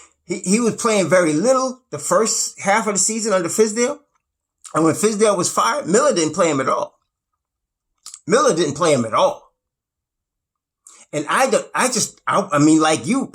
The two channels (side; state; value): both; identical; correlation 1.00